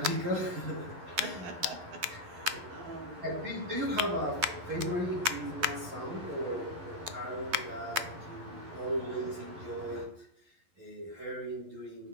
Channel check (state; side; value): late; left; 11 ms